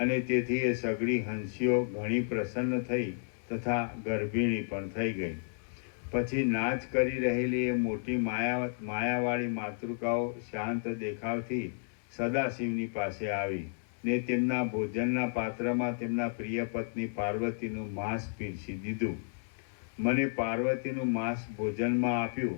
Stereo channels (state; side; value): silent; right; 56 dB below the other